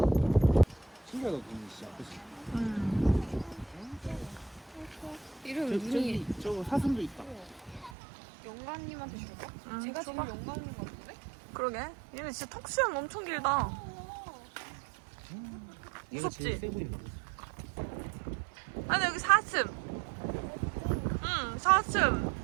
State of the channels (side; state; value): left; drops out; at 8.0 s